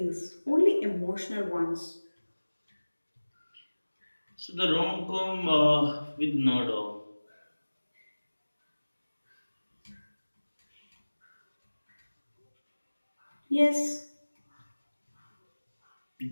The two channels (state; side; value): inverted; both; correlation -1.00